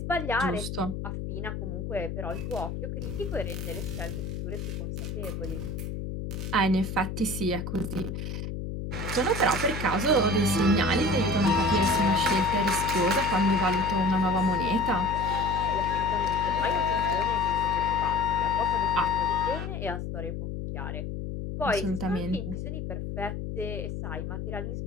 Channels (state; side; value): noise; left; hum, 5 dB below the sound